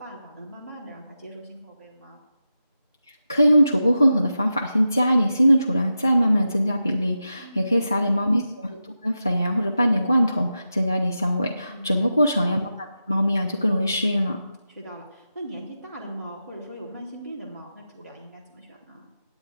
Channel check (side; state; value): both; inverted; correlation -0.90